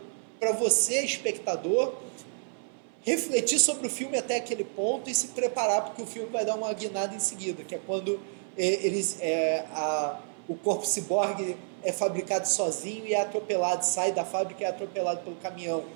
para você, espectador, refletir sobre o filme até aquele ponto e se preparar, porque o filme vai dar uma guinada em seguida, que é quando o corpo ciborgue é fabricado sozinho e é atropelado, sai da fábrica e é atropelado pelo caminhão,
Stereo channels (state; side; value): silent; left; 56 dB below the other